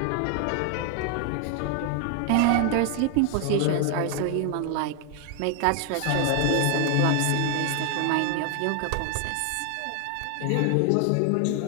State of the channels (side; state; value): both; different; correlation 0.00